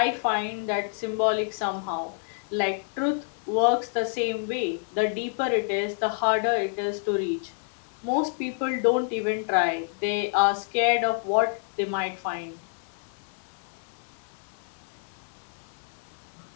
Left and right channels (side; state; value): right; silent; 59 dB below the other